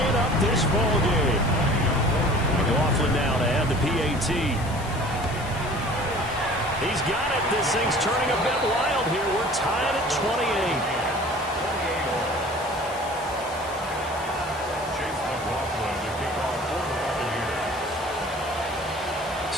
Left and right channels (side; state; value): left; noise; hiss, 16 dB below the sound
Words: up this ball game. McLaughlin now to add the PAT. He's got it. This thing's turning a bit wild here. We're tied at 28.